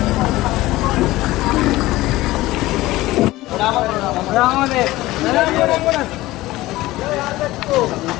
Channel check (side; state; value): right; quieter; 17.9 dB